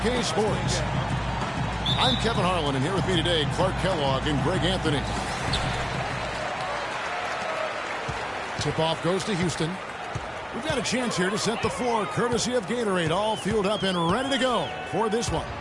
Sports. I'm Kevin Harlan, and here with me today, Clark Kellogg and Greg Anthony. Tip-off goes to Houston. We've got a chance here to set the floor, courtesy of Gatorade, all fueled up and ready to go for this one.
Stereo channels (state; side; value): identical; both; correlation 1.00